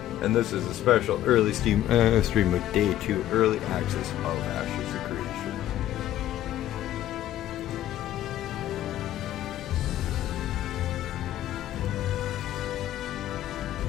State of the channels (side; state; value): right; quieter; 12.8 dB